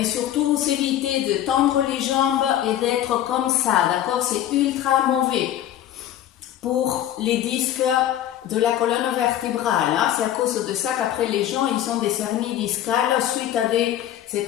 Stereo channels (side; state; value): right; quieter; 11.8 dB